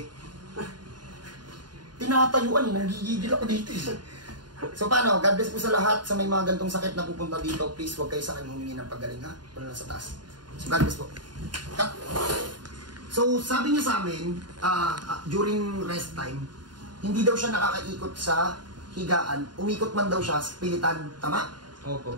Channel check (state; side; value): late; left; 0.70 ms